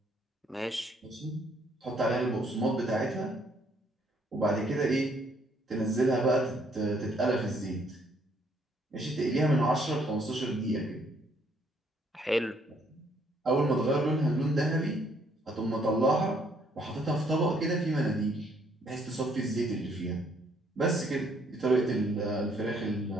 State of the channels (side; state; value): both; normal; correlation 0.67